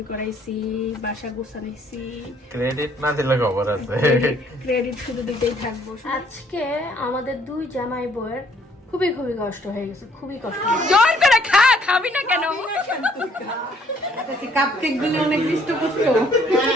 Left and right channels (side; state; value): both; normal; correlation 0.63